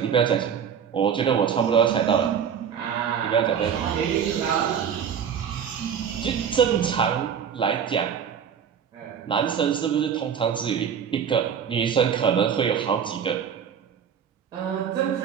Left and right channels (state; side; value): quieter; left; 7.8 dB